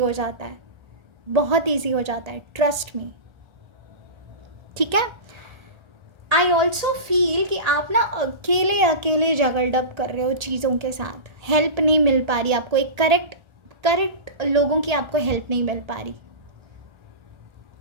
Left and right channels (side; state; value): left; late; 1.3 ms